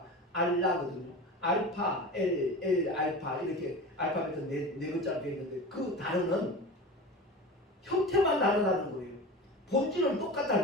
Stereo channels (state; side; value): normal; both; correlation 0.32